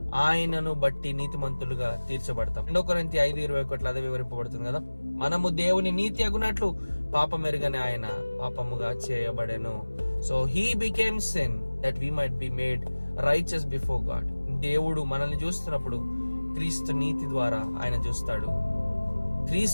ఆయనను బట్టి నీతిమంతులుగా తీర్చబడతాం. 2 కొరింథీ 5:21 అదే వివరింపబడుతుంది కదా. మనము దేవుని నీతి అగునట్లు పాపం ఎరుగని ఆయన పాపముగా చేయబడెను. So he became sin that we might be made righteous before God. దేవుడు మనల్ని చూస్తున్నప్పుడు క్రీస్తు నీతి ద్వారా ఆయన చూస్తాడు.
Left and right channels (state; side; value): inverted; both; correlation -1.00